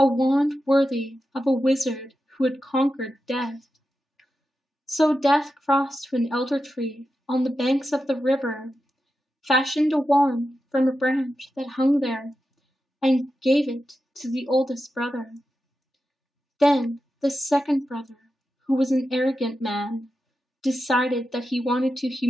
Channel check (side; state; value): both; normal; correlation 0.90